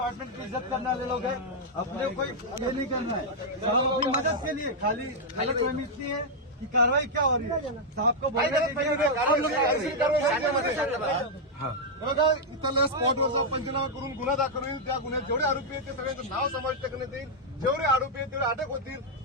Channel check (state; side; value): normal; both; correlation -0.04